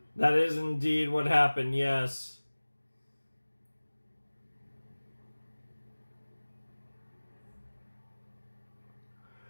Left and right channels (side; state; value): both; inverted; correlation -1.00